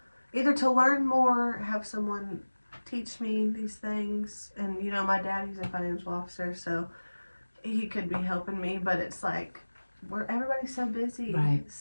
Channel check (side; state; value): both; inverted; correlation -1.00